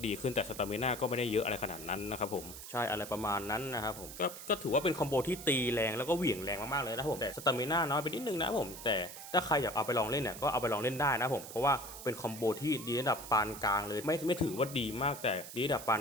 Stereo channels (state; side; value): noise; right; hiss, 12 dB below the sound